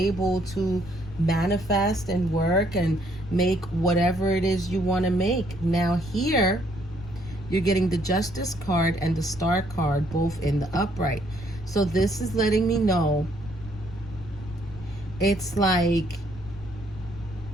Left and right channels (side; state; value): left; noise; rumble, 15 dB below the sound